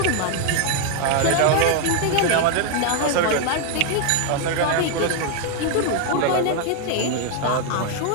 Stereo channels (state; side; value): different; both; correlation 0.00